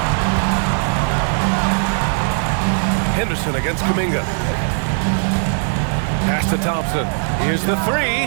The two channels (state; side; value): silent; left; 67 dB below the other